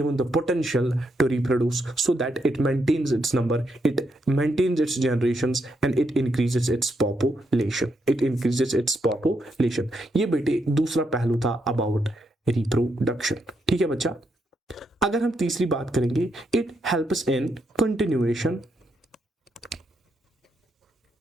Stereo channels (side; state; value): both; normal; correlation 0.79